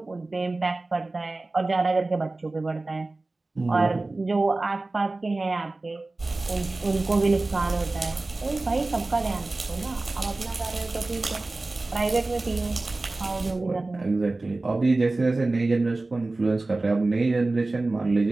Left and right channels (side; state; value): left; quieter; 3.1 dB